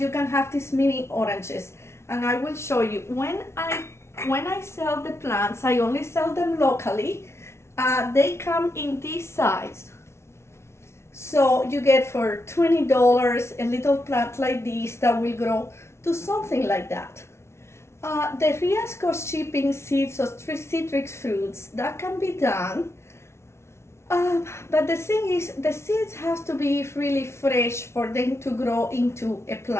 can have these mini oranges. And I will show you. When I sell the plants, I only sell them locally. They come in this size. So you get for $20 a little plant like this that will grow to something like that. The risk of shipping seeds of citric fruits, that can be done. But the thing is, the seeds have to be really fresh for them to grow into a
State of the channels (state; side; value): late; right; 0.13 ms